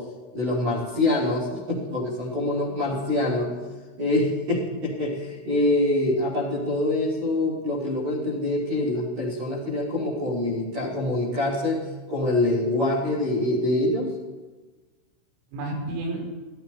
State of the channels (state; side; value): late; left; 16 ms